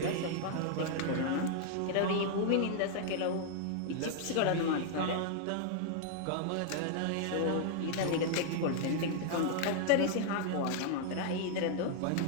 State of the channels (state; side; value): different; both; correlation 0.00